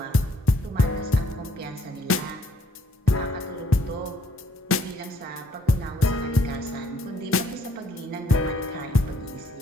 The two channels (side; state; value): both; normal; correlation 0.66